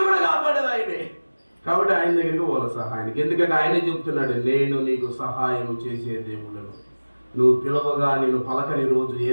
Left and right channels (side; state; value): both; inverted; correlation -1.00